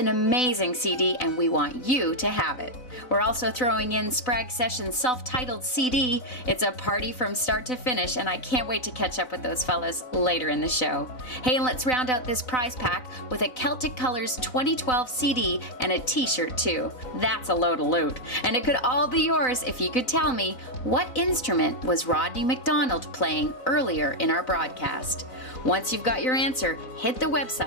amazing CD and we want you to have it. We're also throwing in Sprague Sessions' self-titled CD. It's a party from start to finish, and I can't wait to catch up with those fellas later in the show. Hey, and let's round out this prize pack with a Celtic Colors 2012 CD and a t-shirt too. That's a load of loot. And it could all be yours if you could tell me what instrument was Rodney McDonald playing earlier in our broadcast. Once you've got your answer, hit the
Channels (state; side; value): late; right; 4.0 ms